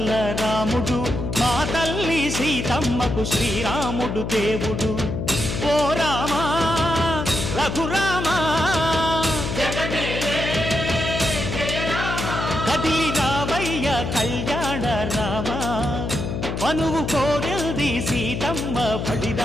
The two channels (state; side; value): noise; left; hum, 3 dB below the sound